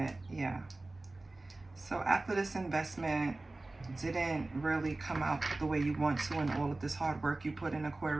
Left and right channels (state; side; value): quieter; left; 3.0 dB